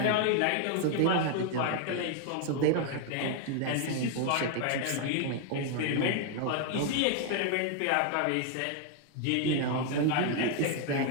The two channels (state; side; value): different; both; correlation 0.00